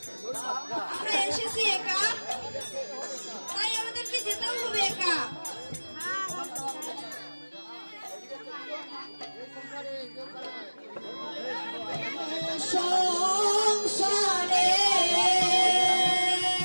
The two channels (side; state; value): both; inverted; correlation -1.00